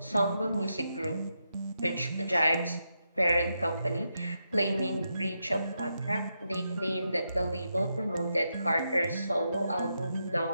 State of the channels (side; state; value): both; inverted; correlation -0.84